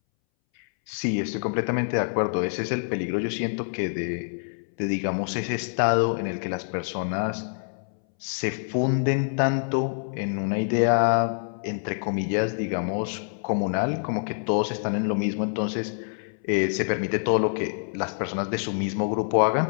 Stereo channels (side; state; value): right; silent; 61 dB below the other